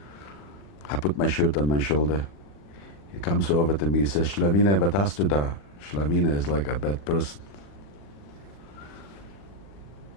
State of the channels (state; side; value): late; right; 40 ms